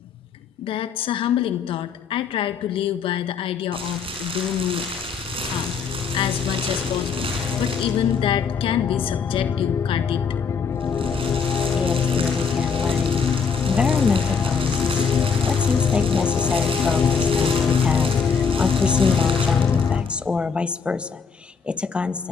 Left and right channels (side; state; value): right; quieter; 5.9 dB